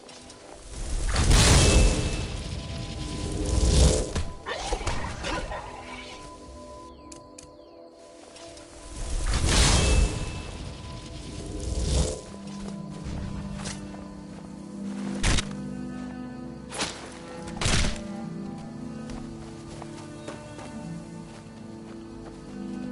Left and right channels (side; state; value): both; identical; correlation 1.00